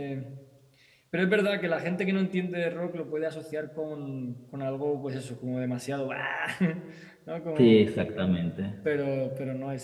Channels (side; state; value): both; identical; correlation 1.00